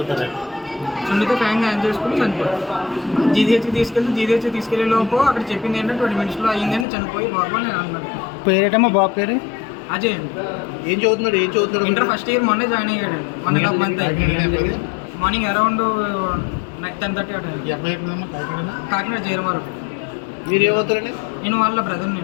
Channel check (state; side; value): drops out; right; at 6.9 s